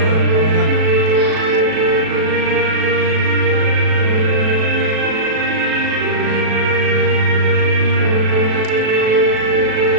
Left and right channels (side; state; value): left; late; 37 ms